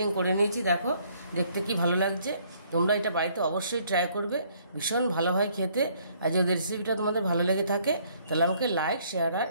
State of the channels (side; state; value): both; inverted; correlation -0.64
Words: করে নিয়েছি। দেখো দেখতে কি ভালো লাগছে। তোমরা এটা বাড়িতে অবশ্যই ট্রাই করবে, ভীষণ ভালো হয় খেতে। আর যদি রেসিপিটা তোমাদের ভালো লেগে থাকে তাহলে আমাকে লাইক, শেয়ার আর